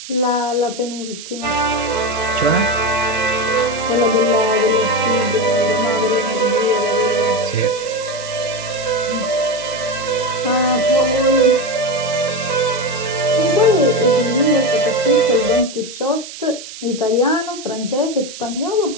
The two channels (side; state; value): right; noise; hiss, 13 dB below the sound